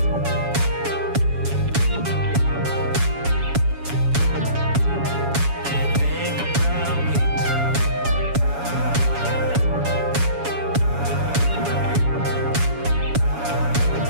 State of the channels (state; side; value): late; left; 7.2 ms